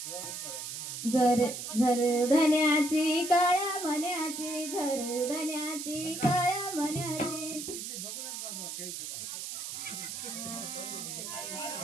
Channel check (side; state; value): right; noise; hiss, 6 dB below the sound